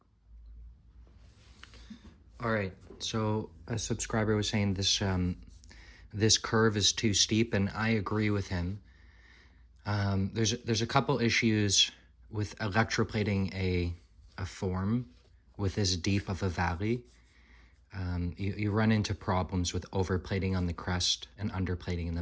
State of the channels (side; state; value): both; identical; correlation 1.00